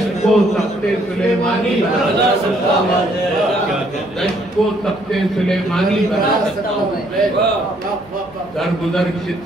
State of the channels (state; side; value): noise; left; hum, 27 dB below the sound